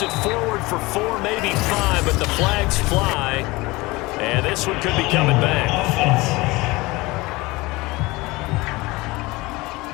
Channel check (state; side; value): quieter; right; 22.1 dB